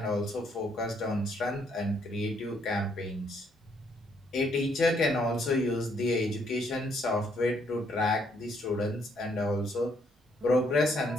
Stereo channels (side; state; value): both; normal; correlation 0.70